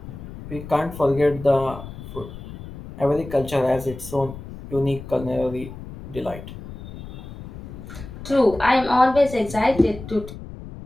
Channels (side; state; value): left; noise; rumble, 13 dB below the sound